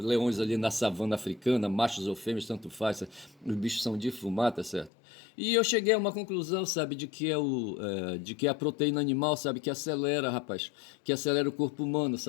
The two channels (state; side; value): drops out; right; at 4.9 s